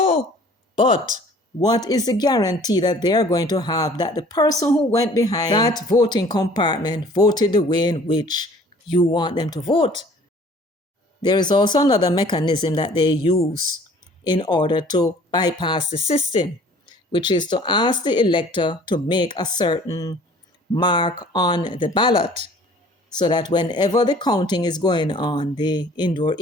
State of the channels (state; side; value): normal; both; correlation 0.52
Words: but what is the guarantee that they're going to have that the person who went behind that voting compartment voted the way in which you want them to vote? There is also another mechanism that they use in order to bypass the system, which is to ask the elector to make a certain mark on the ballot so that whenever the counting is going on, the indoor